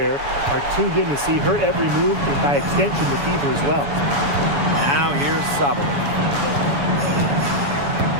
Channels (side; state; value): left; late; 7.1 ms